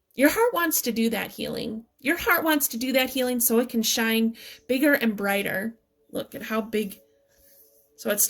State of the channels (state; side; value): identical; both; correlation 1.00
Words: Your heart wants to do that healing. Your heart wants to do that healing so it can shine bigger and brighter. Look at how big. So it